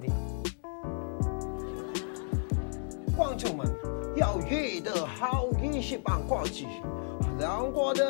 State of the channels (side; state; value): right; silent; digital silence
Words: 观众们要遇的好运气棒挂起，让我